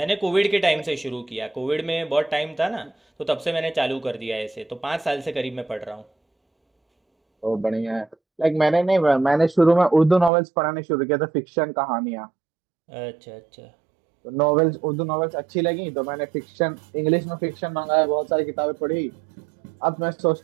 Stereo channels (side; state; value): left; drops out; at 10.3 s